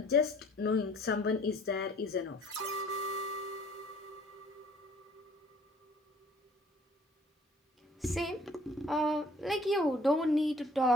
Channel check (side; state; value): both; normal; correlation 0.56